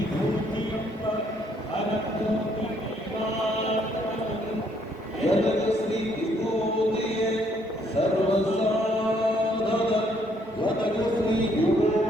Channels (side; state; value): both; normal; correlation 0.68